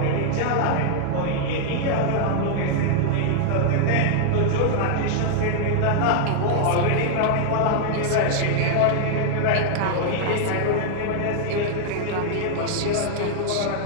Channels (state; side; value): different; both; correlation -0.01